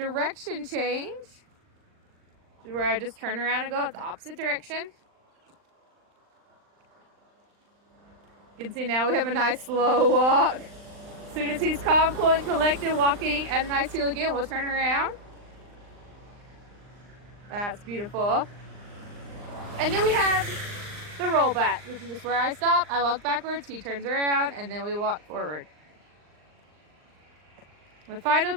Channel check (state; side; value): late; left; 39 ms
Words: change, where I just turn around and go the opposite direction. You can see now we have a nice slow walk. As soon as he's calm, cool, and collected, walking at a nice heel again, we'll turn around. That's beautiful. And then we have the roll back, which is just where I stop, I walk backwards, he turns around, and then we walk forward. My final